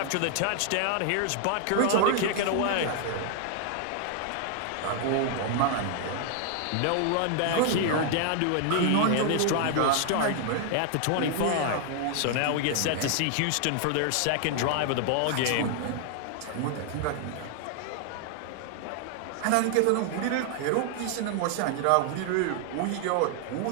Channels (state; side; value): different; both; correlation 0.00